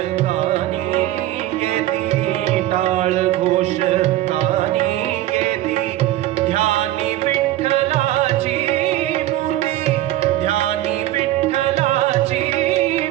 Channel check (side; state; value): left; quieter; 14.7 dB